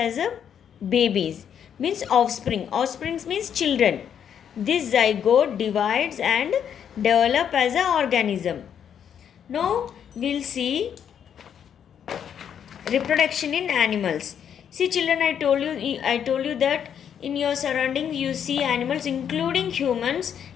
a babies means offspring. Offsprings means children. This zygote divides and develop as an organism. Now we'll see reproduction in animals. See children, I told you that in your surroundings you see animals including humans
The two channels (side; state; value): right; quieter; 8.5 dB